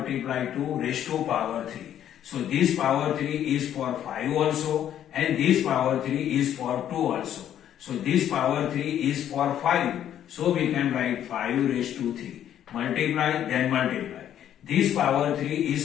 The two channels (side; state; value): right; quieter; 10.6 dB